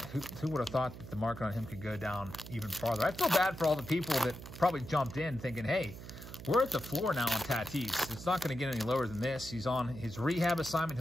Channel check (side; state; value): right; noise; hum, 13 dB below the sound